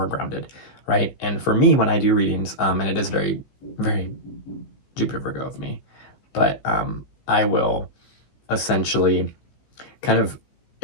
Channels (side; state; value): right; late; 15 ms